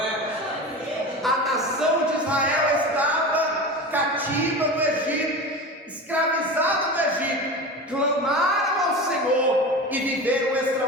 A nação de Israel estava cativa no Egito, escravizada no Egito. Clamaram ao Senhor e viveram o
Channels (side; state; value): both; normal; correlation 0.29